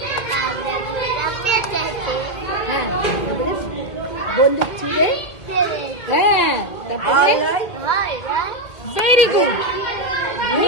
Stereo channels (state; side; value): late; right; 1.7 ms